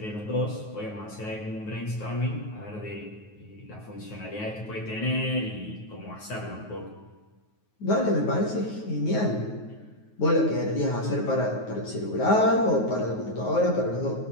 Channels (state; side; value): late; right; 9.4 ms